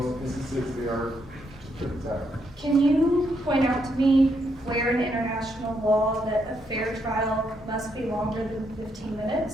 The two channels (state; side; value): normal; both; correlation 0.77